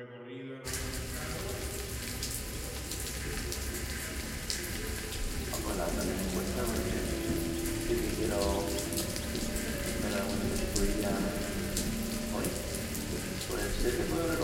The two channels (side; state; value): both; identical; correlation 1.00